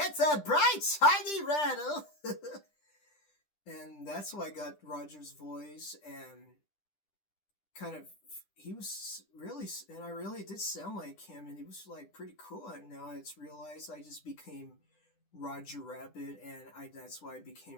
a bright, shiny rattle. and that's why I got Roger's voice, and kind of he was really, and I really did sound like him, and he was like pretty cool. And now it's realized I just became Roger Rabbit, and that's why I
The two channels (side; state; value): right; late; 10 ms